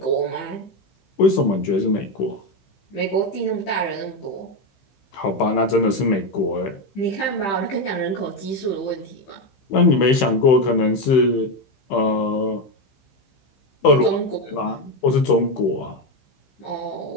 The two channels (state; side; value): late; right; 15 ms